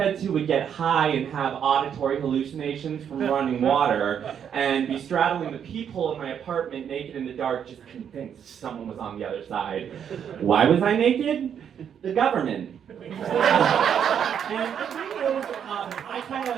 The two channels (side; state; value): left; quieter; 8.4 dB